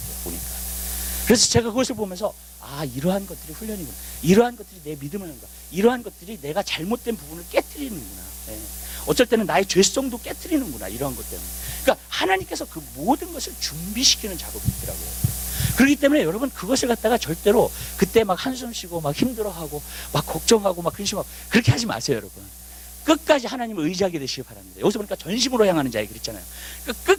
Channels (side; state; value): both; identical; correlation 1.00